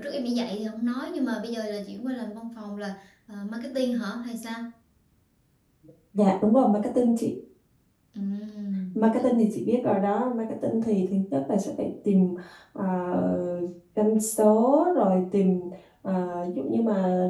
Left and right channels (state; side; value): identical; both; correlation 1.00